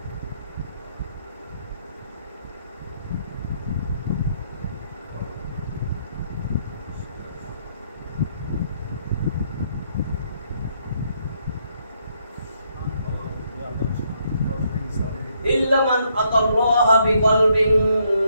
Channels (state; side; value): inverted; both; correlation -0.73